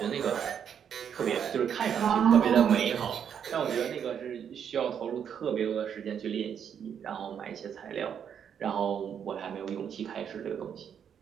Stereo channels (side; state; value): left; quieter; 8.1 dB